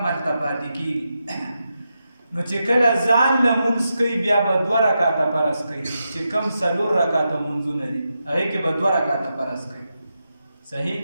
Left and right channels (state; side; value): inverted; both; correlation -0.87